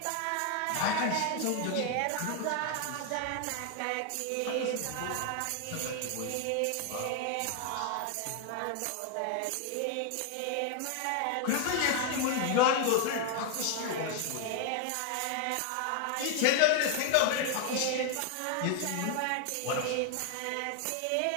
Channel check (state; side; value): different; both; correlation 0.01